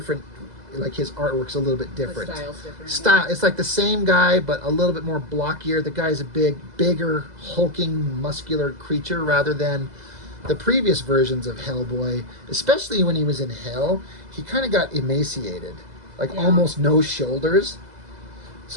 like his artwork's a little bit different. The style's different. Style, it's like the same guy, but a little bit more blockier. The guy's a bigger, hulking, muscular creature rather than the previous versions of HellBoy, especially when he was in hell. He kind of got emaciated, like almost no shoulders.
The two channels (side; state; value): left; late; 2.0 ms